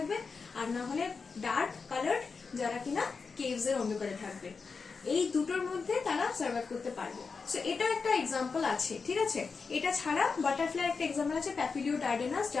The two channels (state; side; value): quieter; right; 4.9 dB